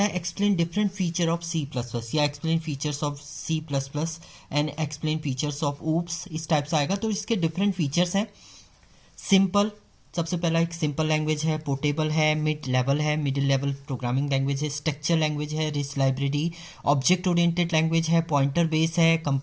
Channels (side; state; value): both; identical; correlation 1.00